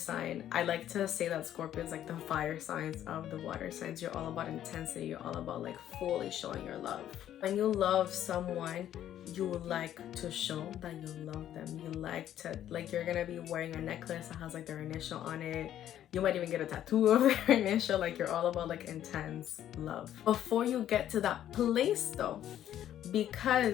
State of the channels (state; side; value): quieter; right; 11.3 dB